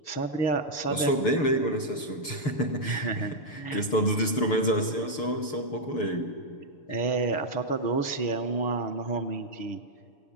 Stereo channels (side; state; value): right; late; 6.8 ms